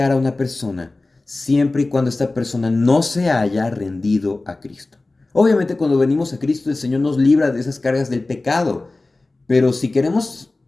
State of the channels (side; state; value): right; quieter; 3.1 dB